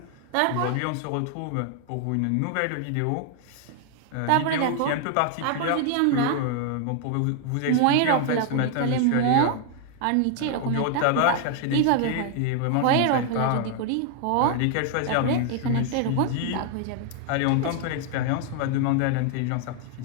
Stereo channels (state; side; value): different; both; correlation 0.00